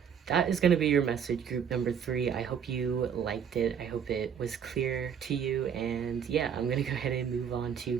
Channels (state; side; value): quieter; left; 7.8 dB